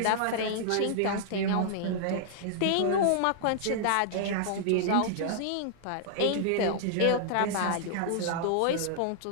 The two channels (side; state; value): both; different; correlation -0.01